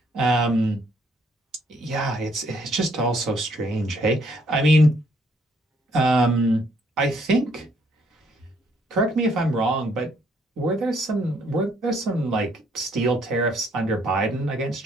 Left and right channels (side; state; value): both; normal; correlation 0.67